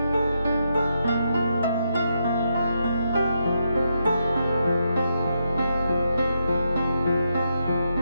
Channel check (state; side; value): inverted; both; correlation -0.81